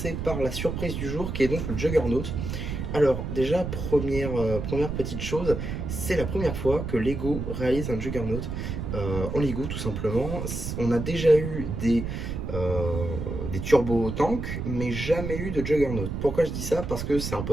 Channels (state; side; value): noise; right; rumble, 4 dB below the sound